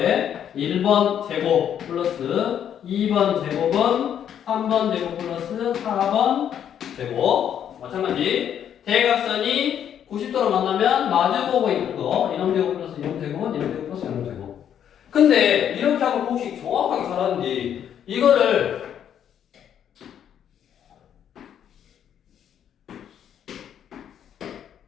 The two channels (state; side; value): quieter; right; 9.3 dB